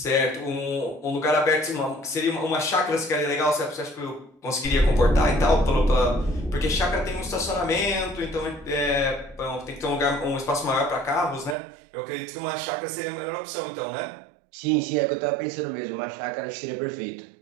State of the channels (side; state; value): left; drops out; at 11.6 s